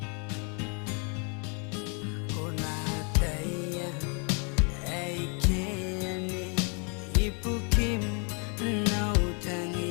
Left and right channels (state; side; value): quieter; right; 37.2 dB